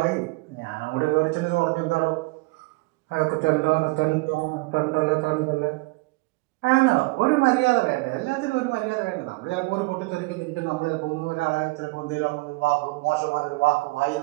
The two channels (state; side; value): quieter; left; 24.8 dB